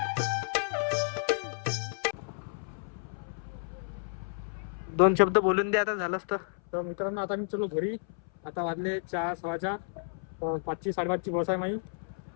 दोन शब्द बोलून दे आता झालंच तर. मित्रांनो आता मी चलो घरी. आता वाजले 4 सव्वा 4. 5ची 5:30ची बस आहे माझी.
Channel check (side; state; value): right; silent; 57 dB below the other